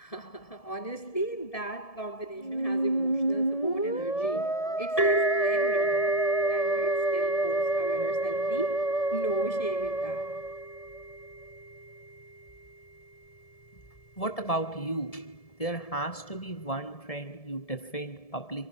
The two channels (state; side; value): late; right; 1.7 ms